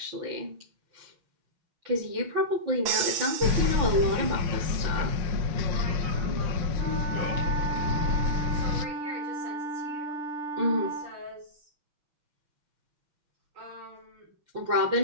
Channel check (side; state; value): left; late; 5.6 ms